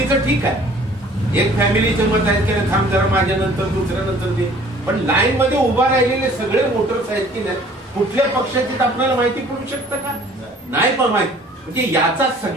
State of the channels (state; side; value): normal; both; correlation 0.53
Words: ठीक आहे. एक फॅमिलीचं मत आहे की थांब जरा माझ्या नंतर दुसऱ्या नंतर दे. पण लाईन मध्ये उभा राहिलेले सगळे वोटर्स आहेत की नाही कुठल्या पक्षाची आपल्याला माहिती पडू शकतं का? नाही पण माहिती. म्हणजे याचा